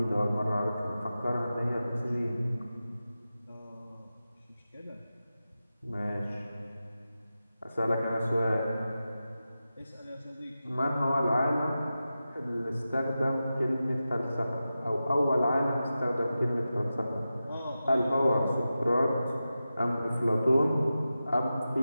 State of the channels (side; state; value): both; inverted; correlation -0.93